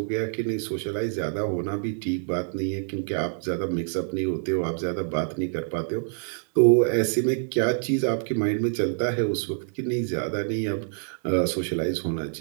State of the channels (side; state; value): left; silent; digital silence